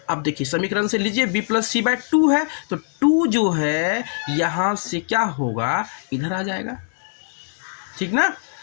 अब देखिए समीकरण से लीजिए b प्लस सी बाय 2 है तो 2 जो है यहाँ से क्या होगा इधर आ जाएगा, ठीक ना।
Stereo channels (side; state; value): right; silent; digital silence